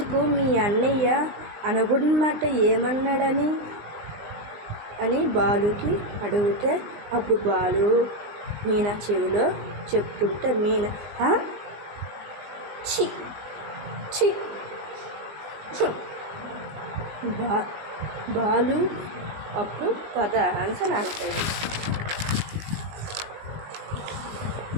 మీ అన్నయ్య అనకూడనమాట ఏమన్నాడని అని బాలుకి అడిగితే, అప్పుడు బాలు మీనా చెవిలో చెప్తుంటే మీనా ఛీ బాలు అప్పుడు పద ఆన్సర్ అంటాడు.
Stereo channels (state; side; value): late; left; 19 ms